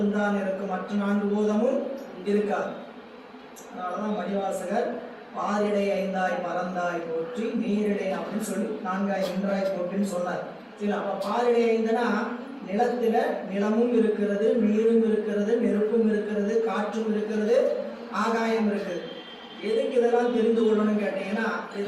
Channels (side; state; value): both; identical; correlation 1.00